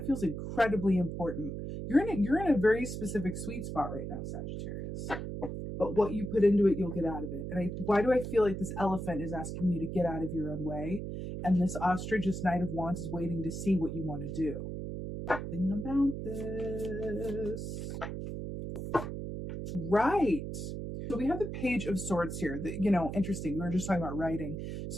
feels incredibly important. You're in a very specific sweet spot right now, Sagittarius. But what you put into it, you'll get out of it. And why do I feel like this elephant is asking you to get out of your own way? And this ostrich, this Knight of Wands, is waiting to see what you want to do. Something about this. Right. So we have the Page of Swords here. Interesting. We were just talking about writing.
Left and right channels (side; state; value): right; noise; hum, 6 dB below the sound